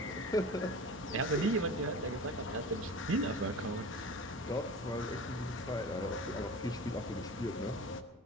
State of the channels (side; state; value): both; normal; correlation 0.35